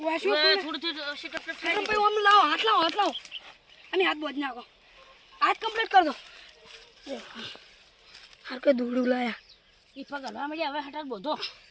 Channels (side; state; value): both; identical; correlation 1.00